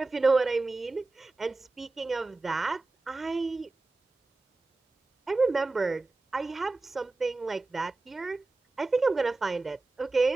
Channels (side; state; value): left; quieter; 3.4 dB